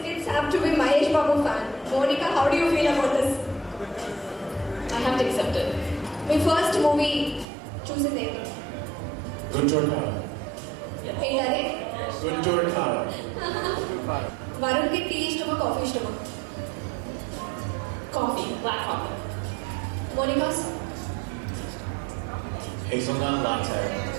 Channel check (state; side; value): drops out; left; at 7.5 s